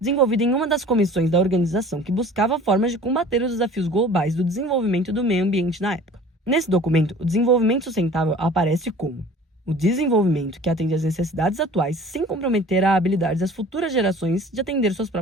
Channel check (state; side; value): normal; both; correlation 0.46